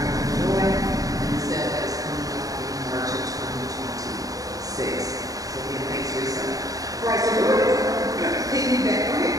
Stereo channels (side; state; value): left; late; 0.17 ms